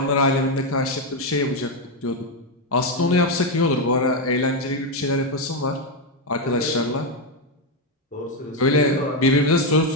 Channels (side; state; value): both; normal; correlation 0.05